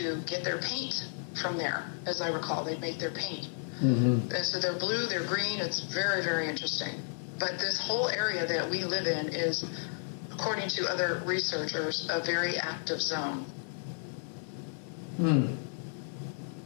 get their paint from there, as I recall. They'd make their paint. Mm-hmm. And so they're blue, they're green. It's very, very interesting. But this whole area that we live in is, according to other researchers, a very active zone.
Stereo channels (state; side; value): silent; right; digital silence